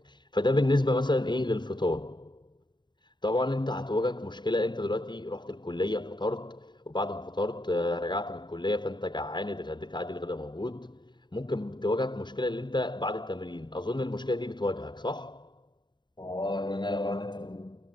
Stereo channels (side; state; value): right; late; 0.22 ms